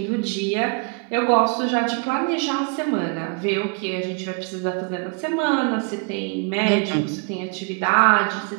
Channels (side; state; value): left; quieter; 34.5 dB